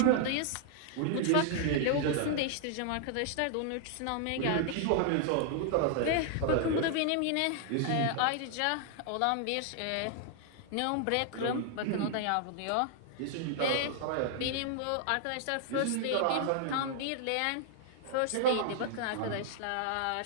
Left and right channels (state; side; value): different; both; correlation 0.00